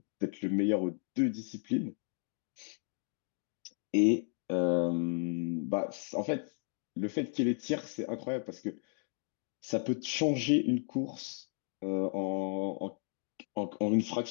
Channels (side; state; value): right; silent; 55 dB below the other